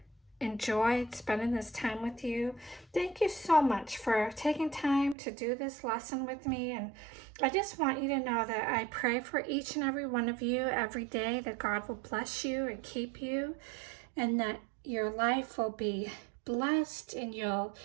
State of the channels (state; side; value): drops out; left; at 5.2 s